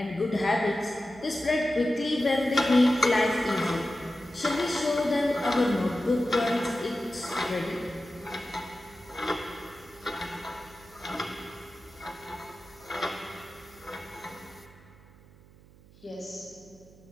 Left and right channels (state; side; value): noise; right; hum, 24 dB below the sound